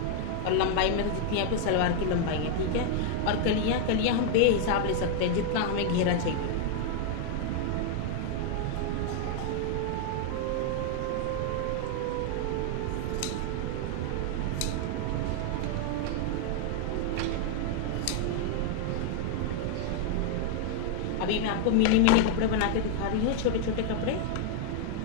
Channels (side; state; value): both; different; correlation 0.00